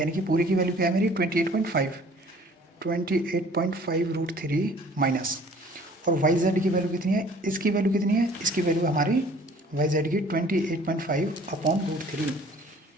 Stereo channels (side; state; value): both; normal; correlation 0.52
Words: यानी कि पूरी की वैल्यू क्या है मेरी 28.5 माइनस, और वाई जेड की वैल्यू कितनी है, इसकी वैल्यू कितनी है, इसकी वैल्यू हमारी वाई जेड की 28.5 अपॉन √3,